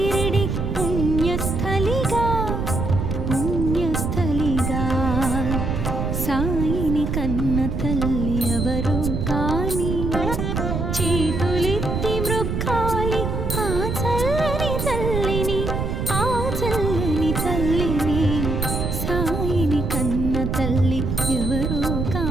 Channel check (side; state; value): right; noise; rumble, 1 dB below the sound